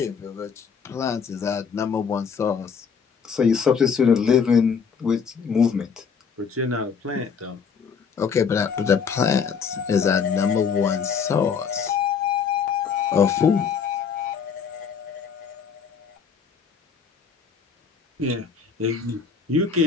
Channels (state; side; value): quieter; right; 6.3 dB